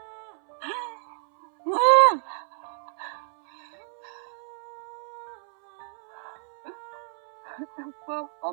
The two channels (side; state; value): left; silent; 59 dB below the other